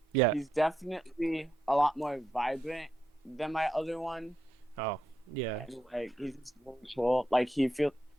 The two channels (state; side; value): normal; both; correlation 0.82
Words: Yeah. he's definitely a lot more vibrant than my other one. Oh, yeah. And, like, he's just really cool. Like he